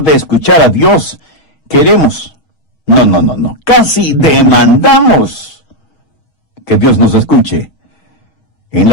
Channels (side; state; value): right; late; 6.3 ms